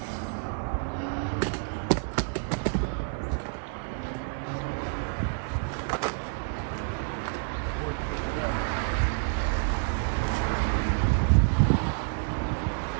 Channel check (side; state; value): left; silent; 59 dB below the other